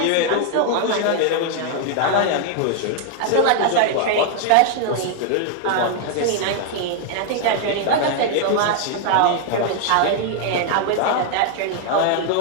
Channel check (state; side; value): different; both; correlation 0.00